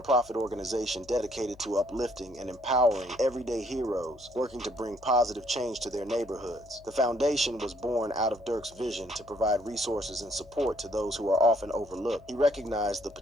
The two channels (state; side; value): noise; left; hum, 24 dB below the sound